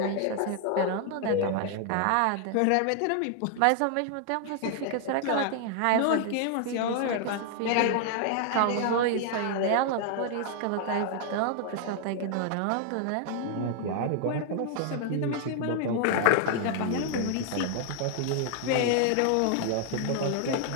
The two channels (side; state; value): both; different; correlation 0.00